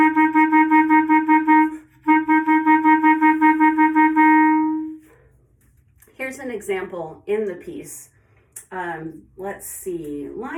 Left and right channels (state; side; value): identical; both; correlation 1.00